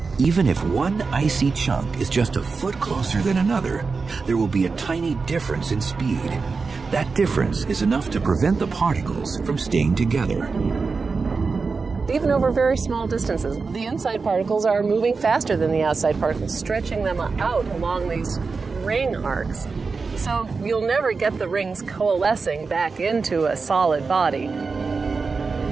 Even if one icy chunk is just a foot closer than another, there will be a tiny difference in speed. That difference is enough to prevent the particles from staying together. Even over very small distances, the inside particles are moving faster than the outside particles, stretching them out along these ring arcs. So you'll never get the rings coalescing back into a solid body.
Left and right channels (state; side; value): quieter; left; 4.6 dB